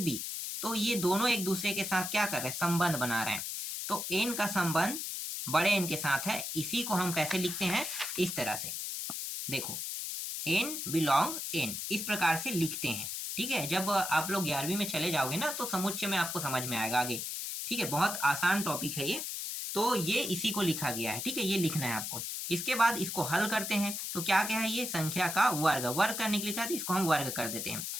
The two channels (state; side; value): noise; left; hiss, 4 dB below the sound